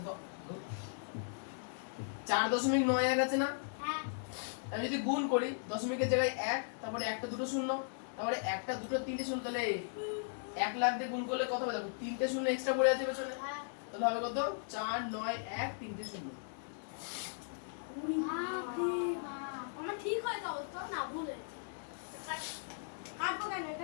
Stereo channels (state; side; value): silent; right; digital silence